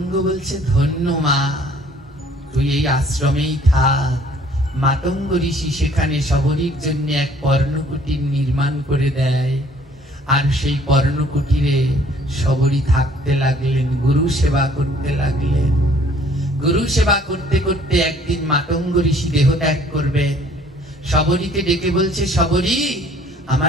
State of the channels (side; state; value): both; normal; correlation 0.58